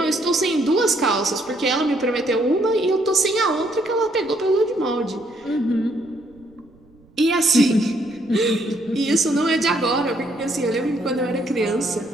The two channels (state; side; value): noise; right; rumble, 29 dB below the sound